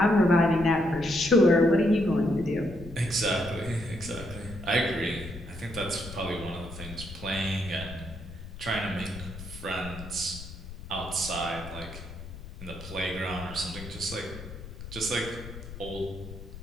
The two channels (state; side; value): noise; left; rumble, 12 dB below the sound